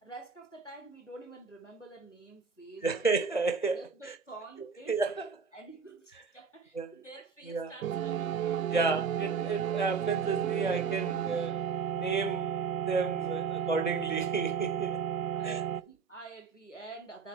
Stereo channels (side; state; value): left; quieter; 5.7 dB